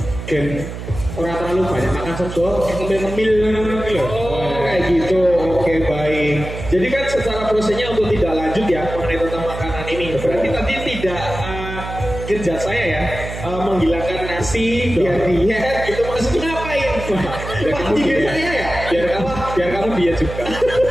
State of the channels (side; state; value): right; noise; hum, 8 dB below the sound